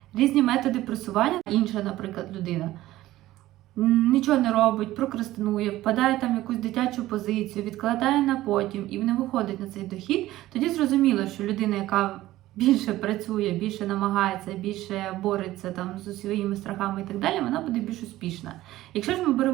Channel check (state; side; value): quieter; left; 15.7 dB